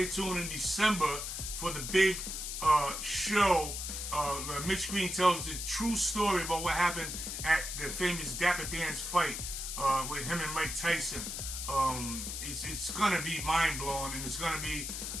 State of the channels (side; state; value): left; noise; hiss, 5 dB below the sound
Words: tuned in December for the big show. Mitch Green tells the true story about what happened at the famous Dapper Dan's fight with him and Mike Tyson. It's gonna be mind blowing, and it's gonna be